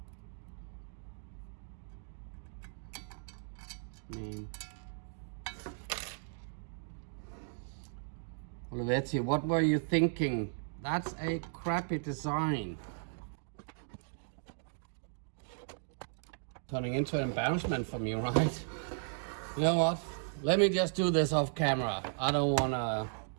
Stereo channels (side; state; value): left; silent; digital silence